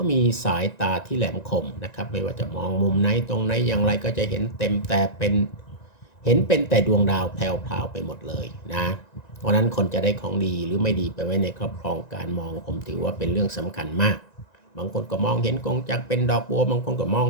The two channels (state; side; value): late; right; 1.9 ms